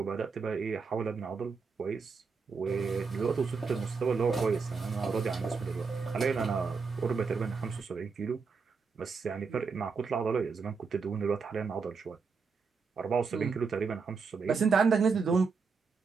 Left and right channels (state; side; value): quieter; left; 5.1 dB